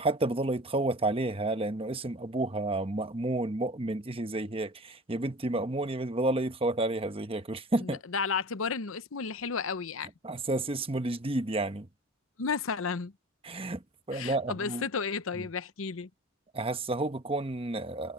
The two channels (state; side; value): normal; both; correlation 0.38